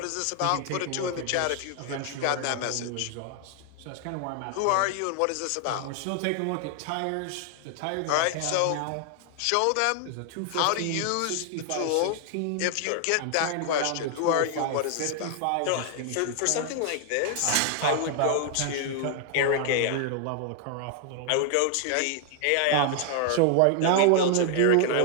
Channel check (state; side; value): different; both; correlation 0.00